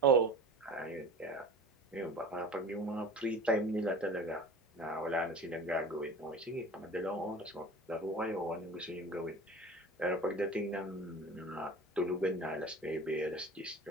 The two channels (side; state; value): both; normal; correlation 0.39